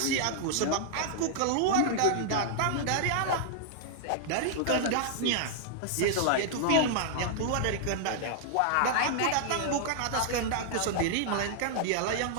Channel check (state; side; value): different; both; correlation -0.01